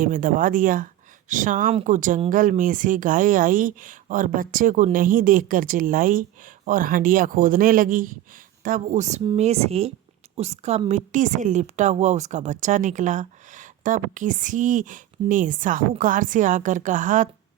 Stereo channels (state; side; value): quieter; left; 13.0 dB